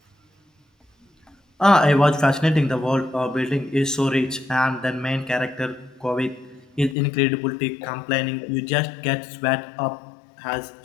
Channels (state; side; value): drops out; right; at 7.0 s